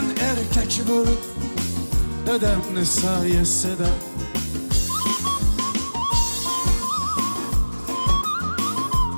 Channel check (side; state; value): both; inverted; correlation -1.00